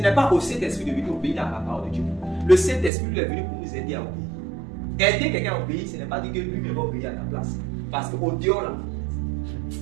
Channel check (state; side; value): drops out; left; at 2.9 s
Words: pas au Saint-Esprit de venir obéir à la parole de Dieu. Le Saint-Esprit lui est venu pour nous aider à obéir. Aider quelqu'un à obéir, ce n'est pas dire que lui va obéir à ta place. Parce qu'au dehors là,